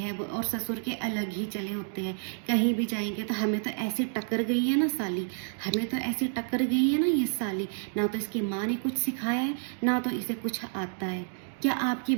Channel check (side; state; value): left; silent; digital silence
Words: और ससुर के अलग ही चले होते हैं। कहीं भी जाएंगे तो हमें तो ऐसी टक्कर गई है ना साली, हमें तो ऐसी टक्कर गई है ना ये साली, ना तो इसकी माँ ने कुछ सिखाया है ना तो इसे कुछ आता है। क्या आपकी